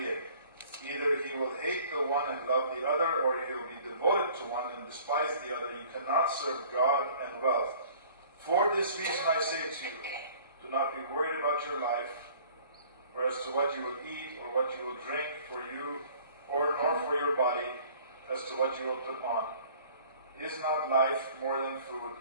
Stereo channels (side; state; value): both; inverted; correlation -0.51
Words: է. Either he will hate the one and love the other, or he will be devoted to one and despise the other. You cannot serve God and wealth. For this reason I say to you, do not be worried about your life, or as to what you will eat or what you will drink for you, or nor for your body, as to what you will put on. Is not life more than food?